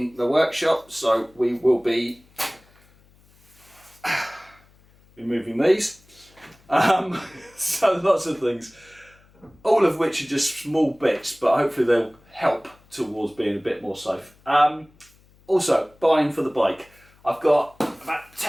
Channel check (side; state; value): left; noise; hum, 30 dB below the sound